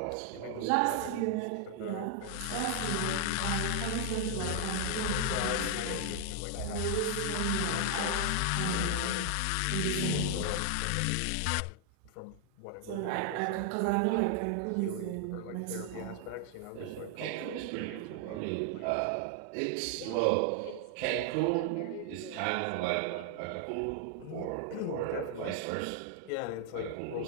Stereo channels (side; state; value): both; different; correlation 0.00